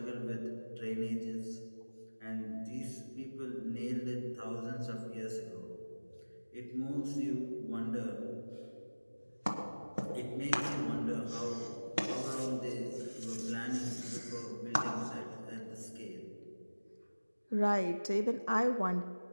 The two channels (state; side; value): inverted; both; correlation -1.00